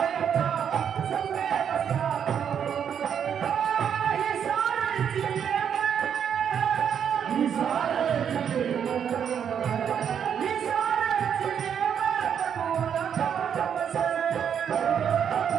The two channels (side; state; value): left; quieter; 8.2 dB